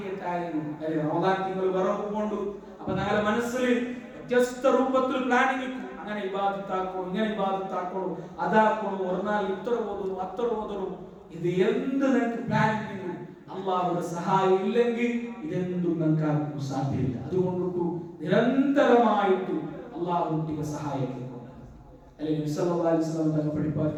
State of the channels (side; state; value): both; identical; correlation 1.00